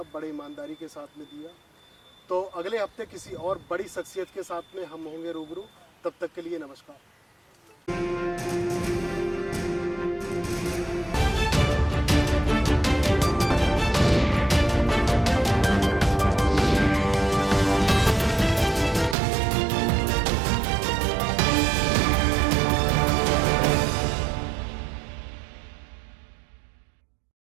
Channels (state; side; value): drops out; left; at 19.2 s